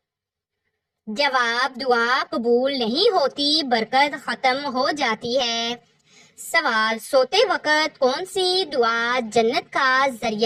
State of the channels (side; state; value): both; identical; correlation 1.00